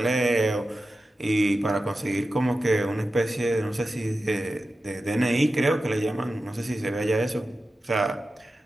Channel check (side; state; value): both; normal; correlation 0.92